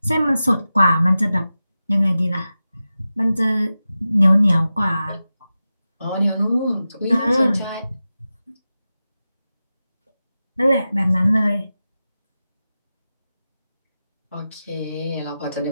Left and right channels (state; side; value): inverted; both; correlation -0.93